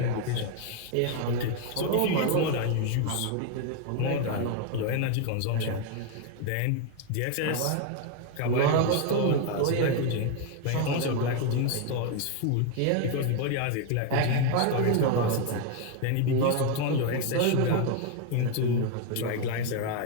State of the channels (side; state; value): both; different; correlation 0.01